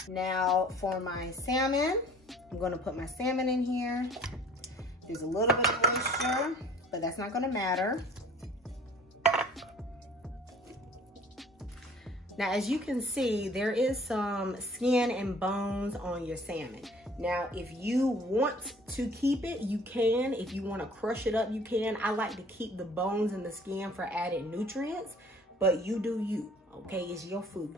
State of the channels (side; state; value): both; normal; correlation 0.51